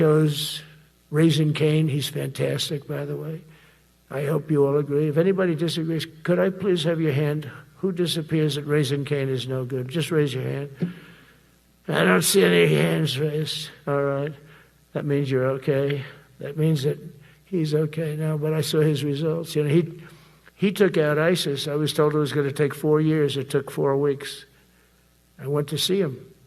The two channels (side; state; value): both; identical; correlation 1.00